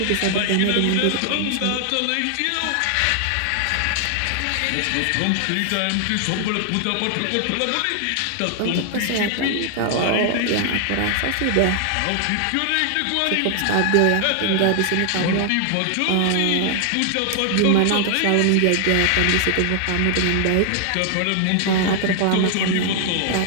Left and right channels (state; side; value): different; both; correlation 0.00